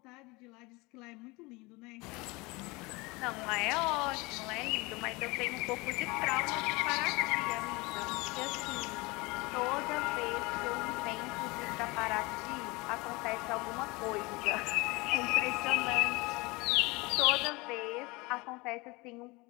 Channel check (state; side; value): quieter; right; 24.5 dB